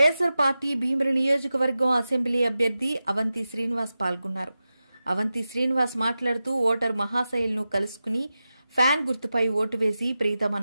పార్టీ భీమిలి నియోజకవర్గం అసెంబ్లీ అభ్యర్థి అవంతి శ్రీనివాస్ పాల్గొన్నారు. అవంతి శ్రీనివాస్ మాట్లాడుతూ ఓటర్ మహాశైలను కలుసుకుని ఫ్యాన్ గుర్తుపై ఓటు వేసి ప్రీతమ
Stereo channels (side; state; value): both; inverted; correlation -0.93